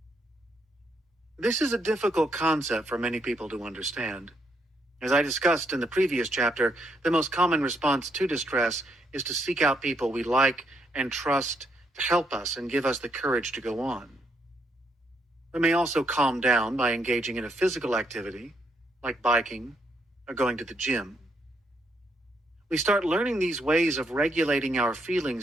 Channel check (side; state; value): both; normal; correlation 0.76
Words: This is a difficult concept for many people to understand. As I discussed in the previous chapter, the most common response to distress is to seek out people we like and trust to help us and give us the courage to go on. We may also calm down by engaging in a physical activity, like biking or going to the gym. We start learning these ways of regulating our